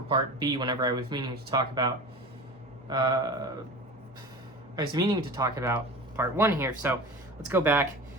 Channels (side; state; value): both; normal; correlation 0.34